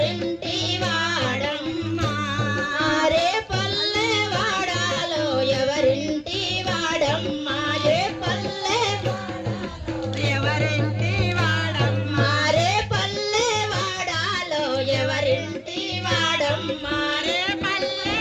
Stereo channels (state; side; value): identical; both; correlation 1.00